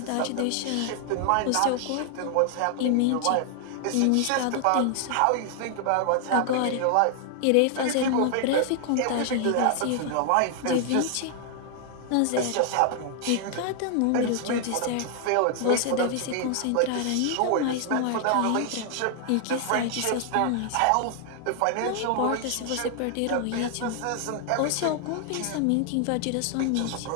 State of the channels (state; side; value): different; both; correlation 0.00